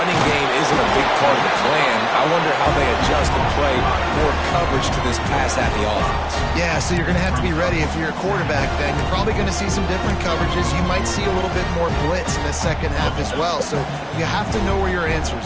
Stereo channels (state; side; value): identical; both; correlation 1.00